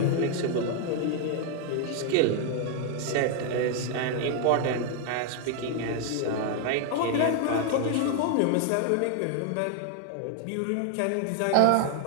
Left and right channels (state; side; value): different; both; correlation 0.00